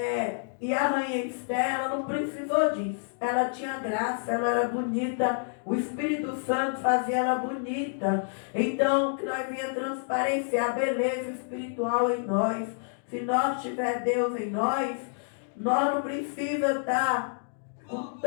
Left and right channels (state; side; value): silent; right; digital silence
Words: E a rainha Esther, ela não precisou disso. Ela tinha graça, ela era bonita. O Espírito Santo fazia ela bonita. Então, que nós venha transparecer a beleza espiritual em nós. Se nós tiver Deus em nós, nós não precisamos estar com